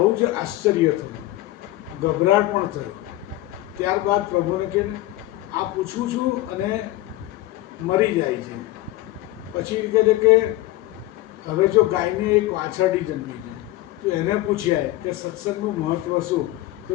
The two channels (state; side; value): quieter; right; 16.7 dB